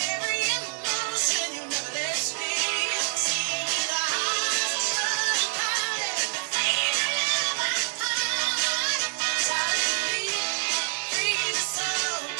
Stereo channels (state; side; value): silent; left; digital silence